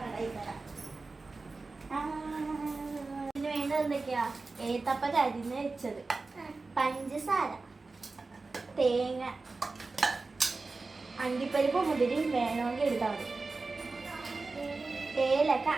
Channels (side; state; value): left; quieter; 3.7 dB